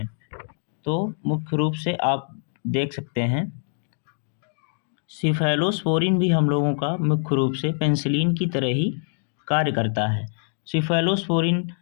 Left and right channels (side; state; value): right; silent; digital silence